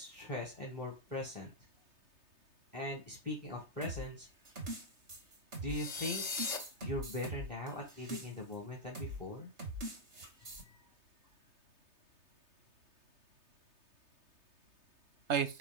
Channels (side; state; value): left; late; 3.3 ms